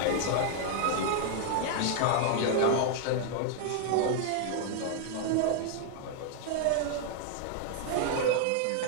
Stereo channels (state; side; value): different; both; correlation 0.00